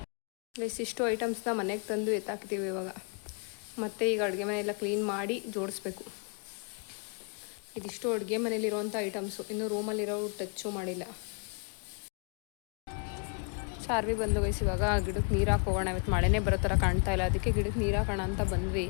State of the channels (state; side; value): quieter; right; 39.5 dB